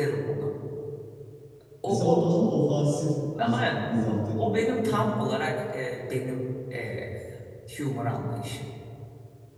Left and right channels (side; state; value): both; identical; correlation 1.00